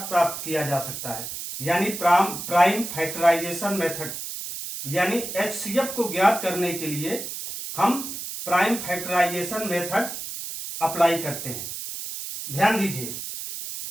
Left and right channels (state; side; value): noise; right; hiss, 7 dB below the sound